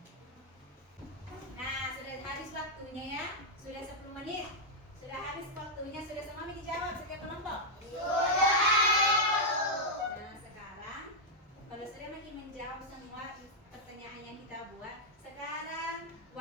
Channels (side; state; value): both; normal; correlation -0.03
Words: Nah, sudah habis waktunya ya. Sudah 10 menit. Sudah habis waktunya. Sudah semua dijawab setiap kelompok? Sudah. Nah, sekarang kalau sudah makin menjawab semua pertanyaan yang kita buat, sekarang